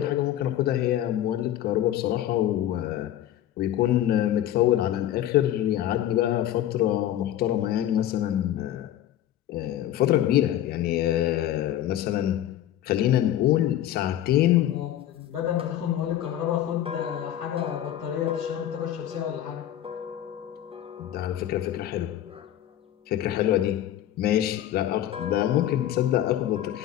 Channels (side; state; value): right; quieter; 12.1 dB